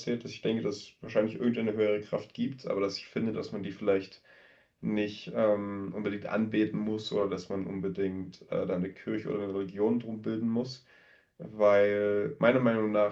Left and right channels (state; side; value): identical; both; correlation 1.00